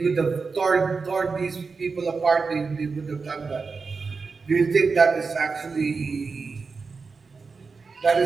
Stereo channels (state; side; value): quieter; left; 4.7 dB